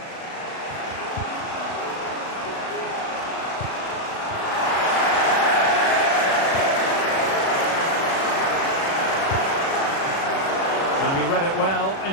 And he read it well,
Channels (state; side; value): late; right; 36 ms